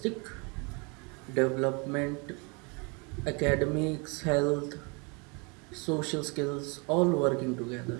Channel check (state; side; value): quieter; left; 31.6 dB